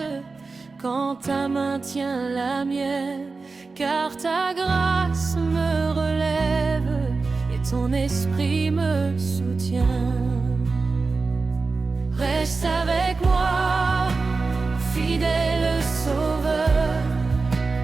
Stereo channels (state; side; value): quieter; left; 4.1 dB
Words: quand ta main tient la mienne, car ta grâce me relève et ton esprit me soutient. Reste avec moi, fidèle Sauveur,